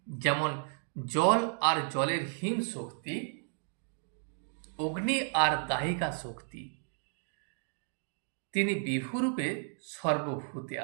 যেমন জল আর জলের হিম শক্তি, অগ্নি আর দাহিকা শক্তি, তিনি বিভুরূপে সর্বভূতে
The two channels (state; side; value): silent; left; 56 dB below the other